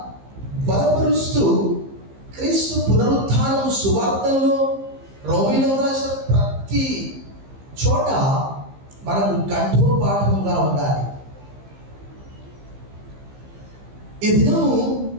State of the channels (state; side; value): late; left; 15 ms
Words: బలపరుస్తూ క్రీస్తు పునరుత్థానం సువార్తల్లో, రోమిలో రాసిన ప్రతి చోట మనకు కంఠోపాఠంగా ఉండాలి. ఈ దినము